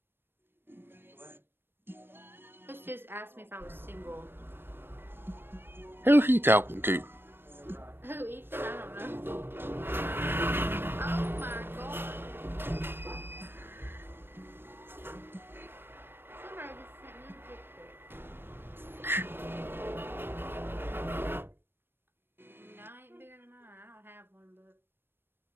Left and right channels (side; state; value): left; late; 0.10 ms